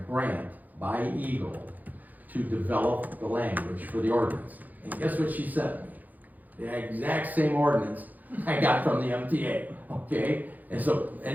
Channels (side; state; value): left; late; 0.082 ms